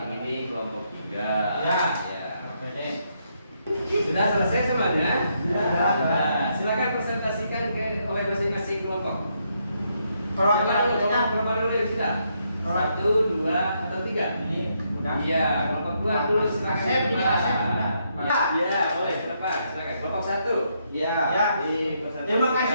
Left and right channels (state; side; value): inverted; both; correlation -0.77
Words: yang ini kelompok 3. Ya. Sudah selesai semuanya? Nah, silakan presentasikan oleh masing-masing kelompok. Kelompok dulu ya sudah. 1, 2, atau 3? Ini udah. Iya, kelompok 2 dulu silakan. Asep. Iya, boleh. Silakan. Kelompok 1. Ya. Dipresentasikan Terima